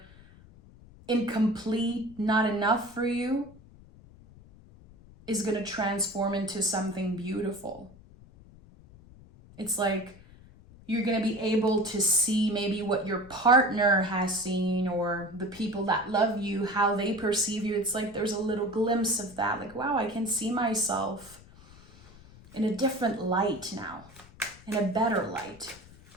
incomplete, not enough for you, is going to transform into something beautiful. It's like you're going to be able to see maybe what your partner has seen, or the people that love you, how they perceive you. It's like there's a little glimpse of that. Like, wow, I can see myself in a different light now, in a better light.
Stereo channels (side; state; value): left; noise; rumble, 22 dB below the sound